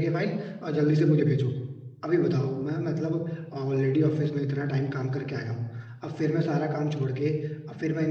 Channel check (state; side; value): identical; both; correlation 1.00